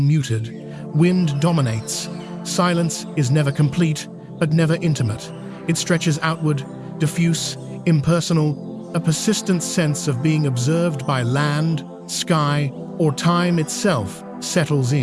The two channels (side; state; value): both; identical; correlation 1.00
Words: Wind dominates. Silence is never complete, but never intimate. It stretches outward, diffuse, impersonal, a persistent sense of being observed by land, sky, or time itself settles